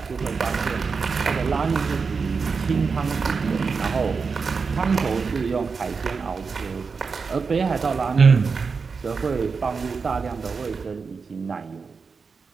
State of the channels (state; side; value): quieter; left; 5.1 dB